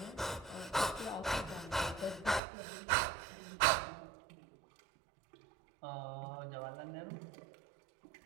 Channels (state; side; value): drops out; left; at 2.4 s